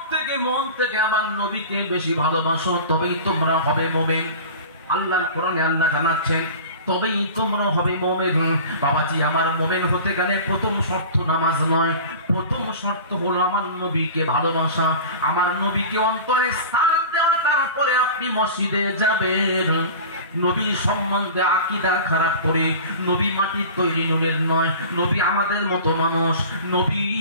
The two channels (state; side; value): inverted; both; correlation -0.36